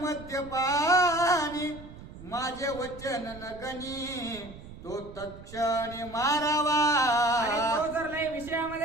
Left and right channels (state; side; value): noise; right; rumble, 16 dB below the sound